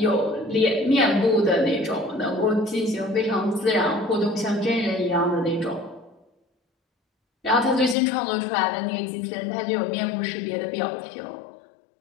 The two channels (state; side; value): drops out; right; at 8.0 s